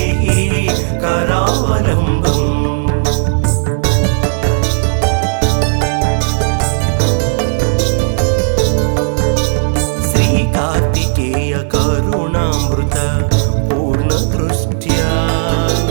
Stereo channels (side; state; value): left; silent; digital silence